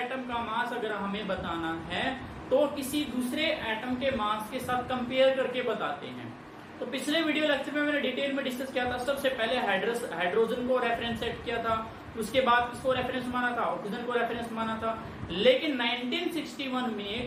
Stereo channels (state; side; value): identical; both; correlation 1.00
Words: का मास अगर हमें बताना है तो किसी दूसरे एटम के मास के साथ कंपेयर करके बताते हैं। तो पिछले वीडियो लेक्चर में मैंने डिटेल में डिस्कस किया था। सबसे पहले हाइड्रोजन को रेफरेंस सेट किया था, उसके बाद किसको रेफरेंस माना था, ऑक्सीजन को रेफरेंस माना था। लेकिन 1961